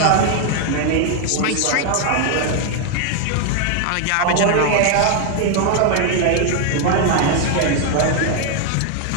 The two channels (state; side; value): different; both; correlation 0.00